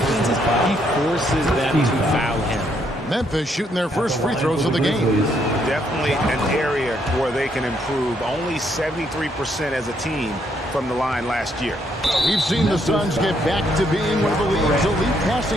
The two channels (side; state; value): both; normal; correlation 0.73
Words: he forces them to foul him. Memphis shooting their first free throws of the game. Definitely an area where they can improve. Only 73% as a team from the line last year. We've seen the Suns get back to being one of the league's elite